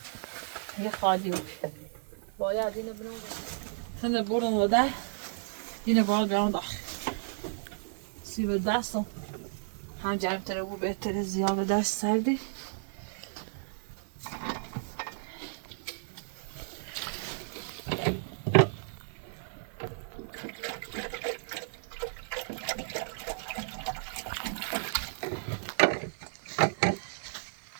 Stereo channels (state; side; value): silent; left; 56 dB below the other